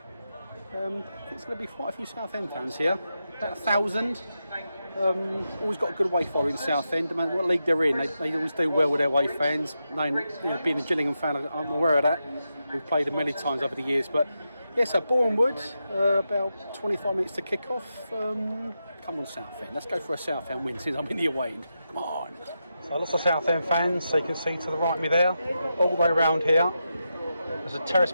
There's going to be quite a few Southend fans here, about 1,000. Always got a good away following Southend. I mean, what league they're in, they always do well with their away fans. Being a Gillingham fan, I'm aware of that. We've played them many times over the years. But yeah, so Boreham Wood, about 25 minutes to kick off. Come on, Southend. Let's go for a Southend win since I'm in the away end. Come on. So lots of Southend fans, so you can see to the right of me there, all the way around here. There's a terrace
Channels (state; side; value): inverted; both; correlation -0.87